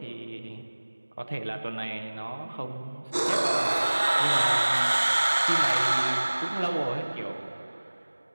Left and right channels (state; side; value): inverted; both; correlation -1.00